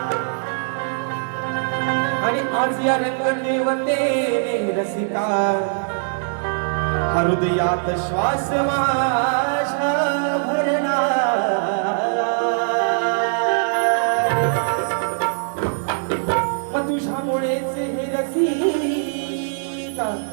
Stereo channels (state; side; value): silent; left; digital silence